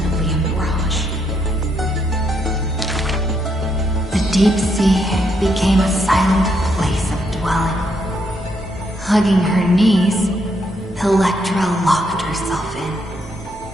a mirage. The deep sea became a silent place of dwelling. Hugging her knees, Electra locked herself in.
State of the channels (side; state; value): both; normal; correlation 0.76